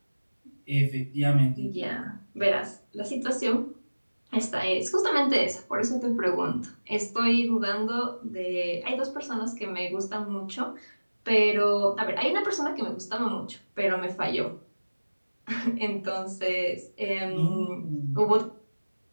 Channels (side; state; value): both; inverted; correlation -1.00